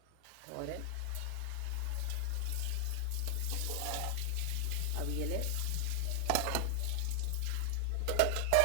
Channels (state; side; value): different; both; correlation 0.00